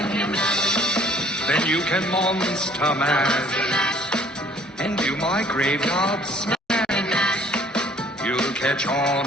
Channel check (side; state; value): both; normal; correlation 0.58